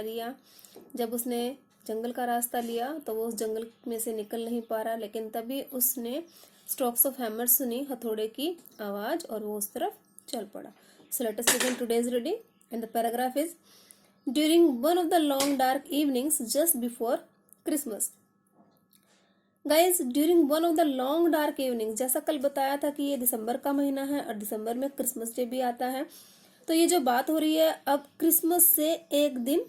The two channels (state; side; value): identical; both; correlation 1.00